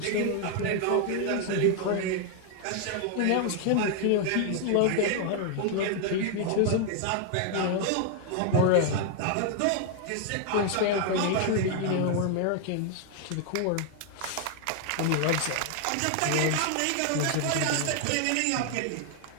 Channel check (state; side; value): different; both; correlation 0.00